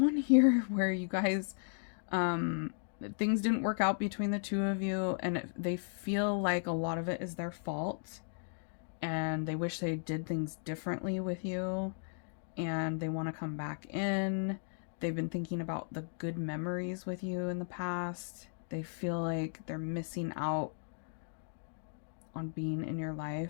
here where you guys, things didn't work out between the two of you, and they feel like a lot of it is their fault, and they wish they did things differently with you, and they want to come back in. They've been thinking about the good memories with you in the past. They feel like they're missing out on being in your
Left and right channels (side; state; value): right; silent; digital silence